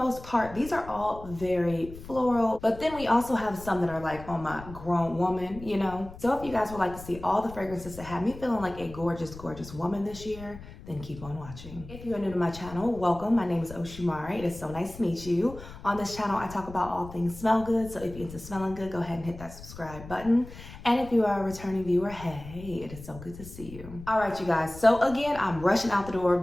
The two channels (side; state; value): left; noise; rumble, 15 dB below the sound